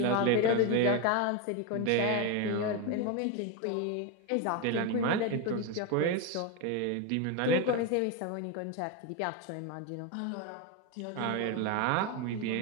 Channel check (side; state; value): both; different; correlation 0.02